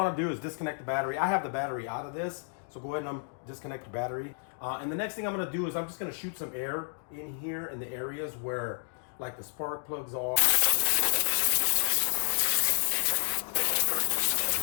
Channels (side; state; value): right; silent; digital silence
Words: to do is disconnect the battery. I have the battery out of this, so go ahead and disconnect the battery. And the next thing I'm going to do is I'm just going to shoot some air in here in the areas where like the spark plugs are.